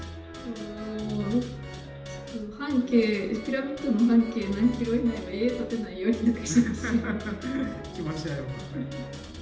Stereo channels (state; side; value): identical; both; correlation 1.00